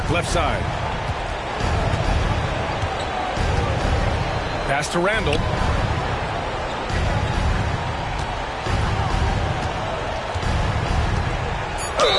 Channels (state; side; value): identical; both; correlation 1.00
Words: left side. Pass to Randall.